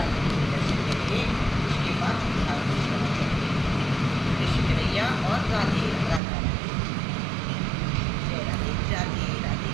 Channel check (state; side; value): drops out; left; at 6.2 s